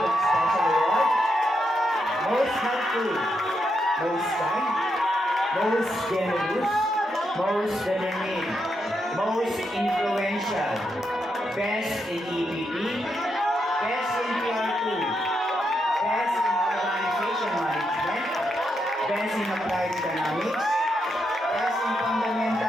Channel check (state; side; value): normal; both; correlation 0.82